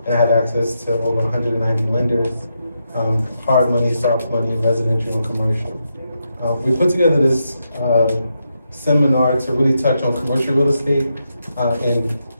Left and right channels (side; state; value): both; inverted; correlation -0.83